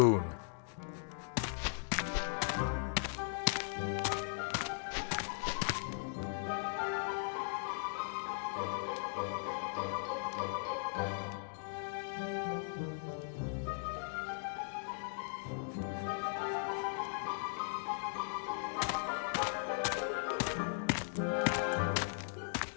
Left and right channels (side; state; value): right; silent; digital silence